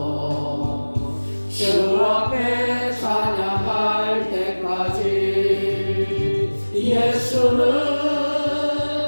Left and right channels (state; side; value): inverted; both; correlation -1.00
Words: 주 앞에 찬양할 때까지 예수는